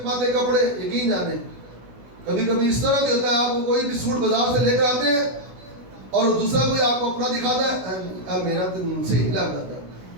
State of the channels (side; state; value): left; late; 16 ms